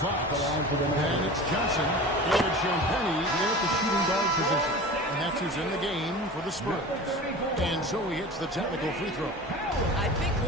Then it's Johnson. And it's Champagnie in at the shooting guard position. And that's who's in the game for the Spurs. And so he hits the technical free throw. I think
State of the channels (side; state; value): both; normal; correlation 0.35